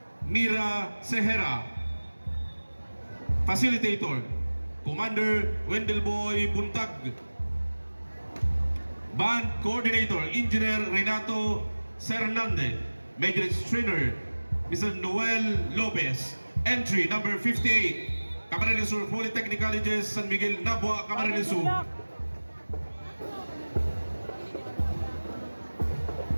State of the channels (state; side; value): inverted; both; correlation -1.00